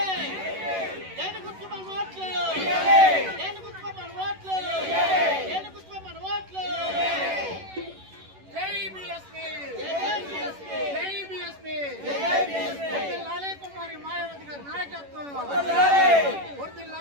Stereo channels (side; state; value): left; late; 11 ms